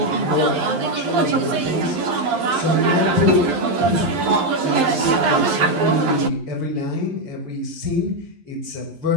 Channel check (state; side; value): late; left; 11 ms